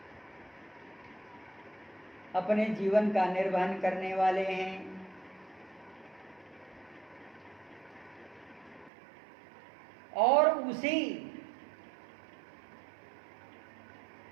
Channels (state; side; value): drops out; left; at 8.9 s